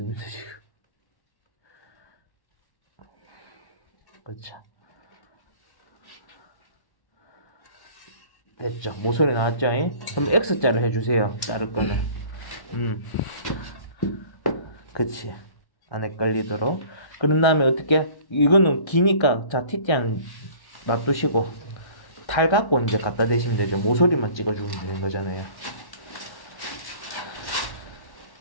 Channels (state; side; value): late; right; 1.1 ms